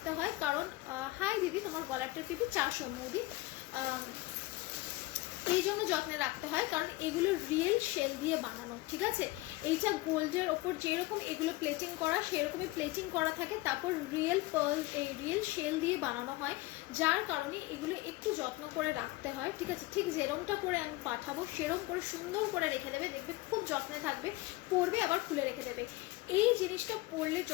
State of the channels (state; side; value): quieter; right; 20.0 dB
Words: হয় কারণ, হাই দিদি, তোমার গলার টিপি 400 মোদি, এই জন্য যত্নে রাখতে হয় কারণ এগুলো রিয়েল শেল দিয়ে বানানো, ঠিক আছে। এইটা গোল্ডের ওপর যেরকম এগুলো প্লেটিং করা, সেরকমই প্লেটিং করা থাকে, তারপর রিয়েল পার্ল, এই রিয়েল শেল দিয়ে বানানো হয়, যার কারণে এগুলো একটু যত্ন করে রাখতে হয়, ঠিক আছে। ঠিক যেরকমটা করে আমি পাঠাবো সেরকম করে সুন্দর করে রেখে দেবে, দেখবে খুব যত্নে থাকবে, পরবে আবার খুলে রেখে দেবে। এই জিনিসটা পরলে